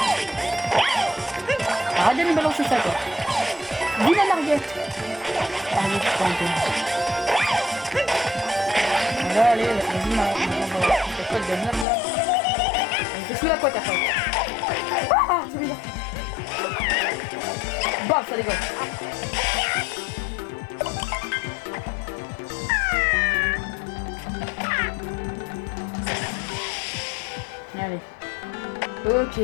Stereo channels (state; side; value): drops out; right; at 11.9 s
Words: Arrête de me balancer ça quoi. Viens en arrière. Allez, c'est un peu. Allez, vas-y, c'est quoi de merde là? Je suis la quoi ta faute? Ah, c'est bizarre. Bam, ça dégage. Allez. Ok, il